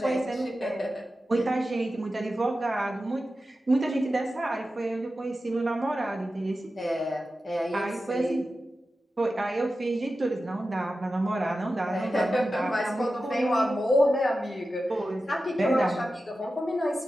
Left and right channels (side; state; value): both; normal; correlation 0.93